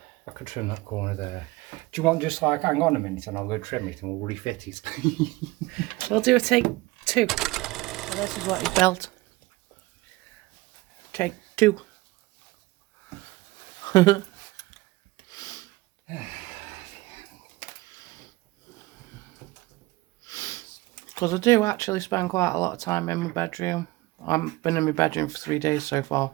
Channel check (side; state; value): left; quieter; 20.5 dB